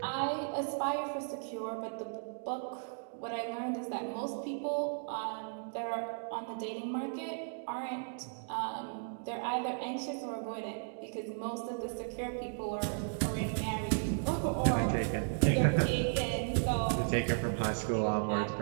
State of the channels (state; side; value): silent; left; digital silence